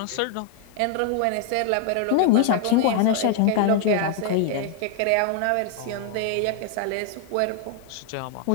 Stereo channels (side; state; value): both; different; correlation 0.00